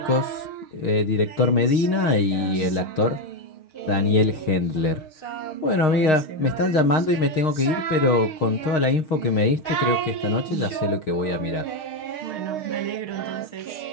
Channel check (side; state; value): right; late; 6.4 ms